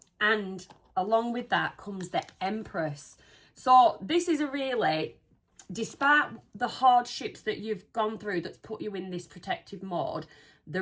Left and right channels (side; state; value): both; identical; correlation 1.00